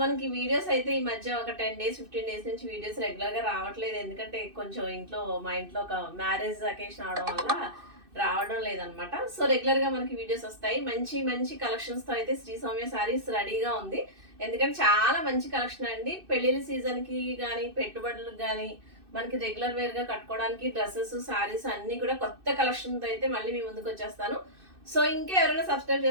మనకి వీడియోస్ అయితే ఈ మధ్య ఒక 10 days 15 days నుంచి వీడియోస్ రెగ్యులర్గా రావట్లేదు, ఎందుకంటే కొంచెం మా ఇంట్లో ఒక మ్యారేజ్ అకేషన్ అవడం వల్ల రావడం లేదనమాట. సో రెగ్యులర్ గా మనకి వీడియోస్ వస్తాయి. మంచి మంచి కలెక్షన్స్ తో అయితే శ్రీ సౌమ్య సారీస్ రెడీగా ఉంది, ఎందుకంటే చాలా మంచి కలెక్షన్ అండి. పెళ్లిళ్ళ సీజన్ కి కానీ పెట్టుబడులకు కానీ మనకి రెగ్యులర్ వేర్ గా కట్టుకోవడానికి డ్రెస్సెస్ సారీస్ అన్ని కూడా కొత్త కలెక్షన్ తో అయితే మళ్ళీ మీ ముందుకు వచ్చేస్తాను. సో ఇంకా ఎవరైనా సబ్స్క్రైబ్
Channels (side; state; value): left; late; 2.6 ms